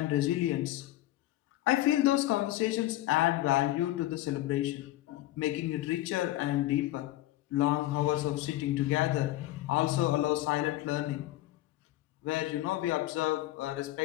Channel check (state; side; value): quieter; right; 15.6 dB